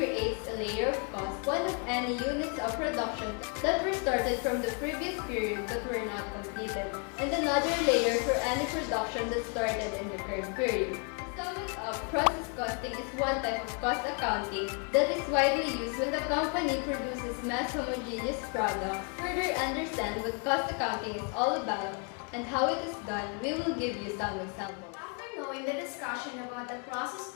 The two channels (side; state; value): right; quieter; 38.2 dB